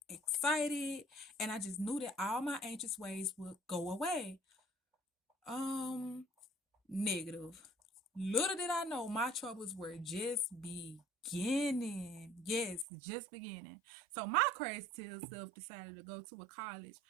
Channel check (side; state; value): left; drops out; at 12.9 s